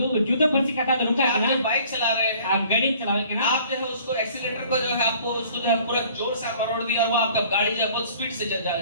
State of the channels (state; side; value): inverted; both; correlation -0.53